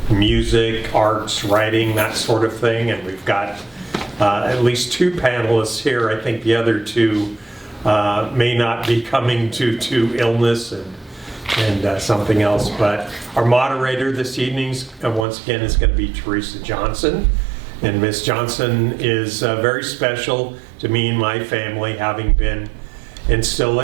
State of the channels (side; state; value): left; drops out; at 15.2 s